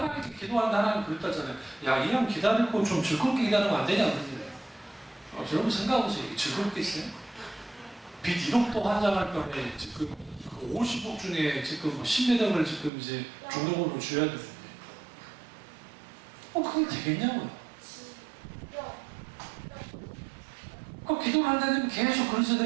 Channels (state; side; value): drops out; left; at 12.9 s